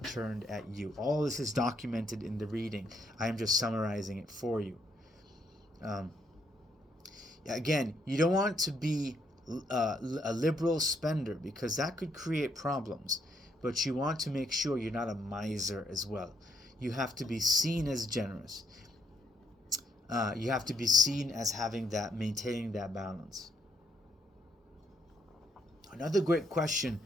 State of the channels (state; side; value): normal; both; correlation 0.74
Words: turned at you. All this is documented in the reading. I am just summarizing it for you. Again, you don't want to be a liberal spender, because that could create problems. But you want to make sure you're not a miser as well. You have to be seen as generous. You have to be seen as maintaining that balance. Another great question